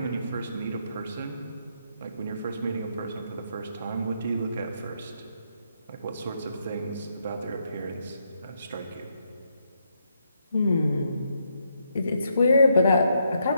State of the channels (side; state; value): both; inverted; correlation -0.77